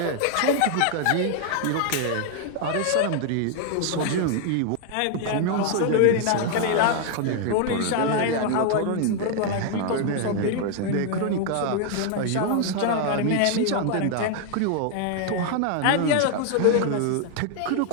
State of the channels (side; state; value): both; different; correlation 0.00